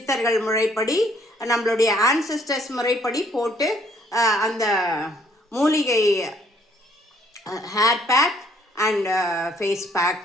முறைப்படி, நம்மளுடைய ஆன்செஸ்டர்ஸ் முறைப்படி போட்டு அந்த மூலிகை hair pack and face pack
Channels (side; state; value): both; normal; correlation 0.63